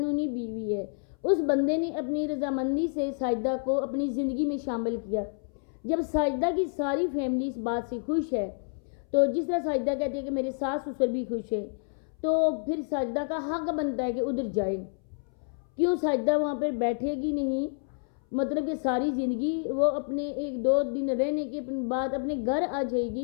بیوی ہے. اس بندے نے اپنی رضامندی سے ساجدہ کو اپنی زندگی میں شامل کیا. جب ساجدہ کی ساری فیملی اس بات سے خوش ہے، تو جس طرح ساجدہ کہتی ہے کہ میرے ساس سسر بھی خوش ہیں، تو پھر ساجدہ کا حق بنتا ہے کہ ادھر جائے. کیوں ساجدہ وہاں پر بیٹھے گی نہیں؟ مطلب کہ ساری زندگی وہ اپنے 1-2 دن رہنے کے بعد اپنے گھر آ جائے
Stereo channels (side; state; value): right; silent; 59 dB below the other